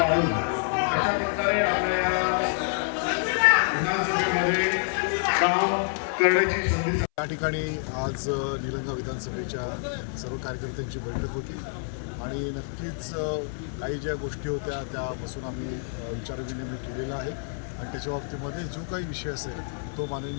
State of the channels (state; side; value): silent; right; 60 dB below the other